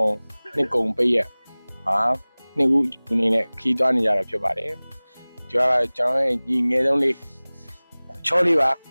ကုံပေးရဟာနှစ်ခုအနေနဲ့ခီးသွားနေကြတာဖြစ်ပါတယ်ကျွန်တော်ရဲ့ဒီငယ်ဆုံးလေးချောလေးပါ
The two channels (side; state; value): both; inverted; correlation -1.00